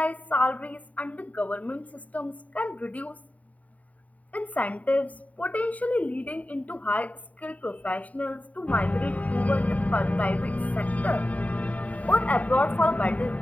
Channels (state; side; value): late; right; 0.070 ms